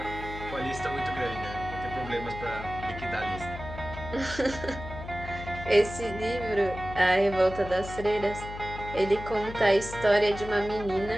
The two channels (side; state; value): left; noise; hum, 11 dB below the sound